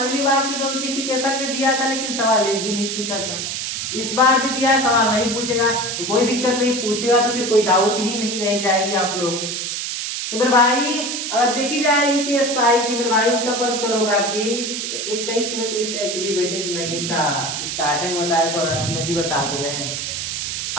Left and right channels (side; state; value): right; noise; hiss, 3 dB below the sound